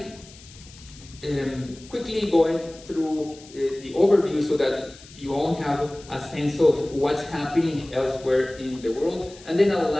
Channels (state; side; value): noise; left; hiss, 21 dB below the sound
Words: quickly going through the overview so that you all have a sense of what's happening elsewhere in the world, and then I'll